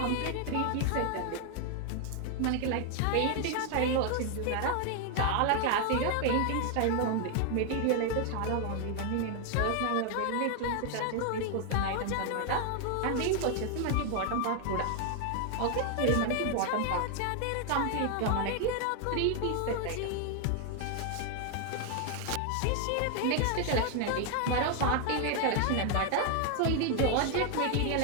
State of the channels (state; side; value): different; both; correlation 0.00